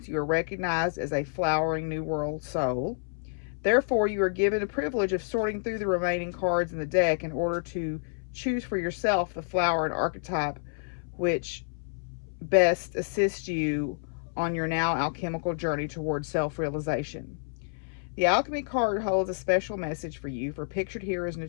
you are recognized as a flowering New World Soul. Therefore, you are given the privilege of sorting through the remaining cards in the deck in order to choose for yourself the flower and archetype which best assists you on your now alchemical journey towards self-realization. The Alchemy card holds a special message for you, for pictured here is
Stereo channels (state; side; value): silent; right; 59 dB below the other